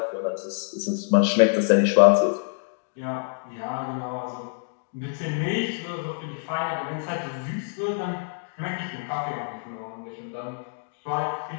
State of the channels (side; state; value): right; silent; digital silence